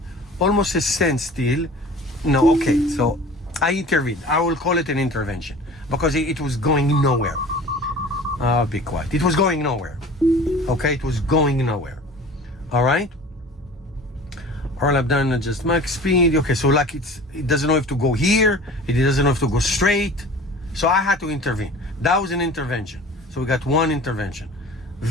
almost a standstill. No, okay. So I intervened. I will call it an intervention, because it was going nowhere. Be quiet. It was going nowhere. Okay, it was going nowhere. All right. All I've done is just max speed. Okay, so like it doesn't know if to go here. It doesn't know if to go straight. So I had to intervene. That was an intervention. So we got one intervention.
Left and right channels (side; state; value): both; normal; correlation 0.42